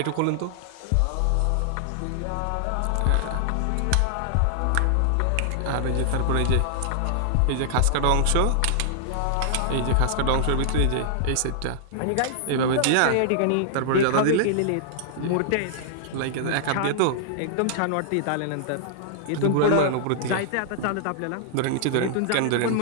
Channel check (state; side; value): different; both; correlation -0.01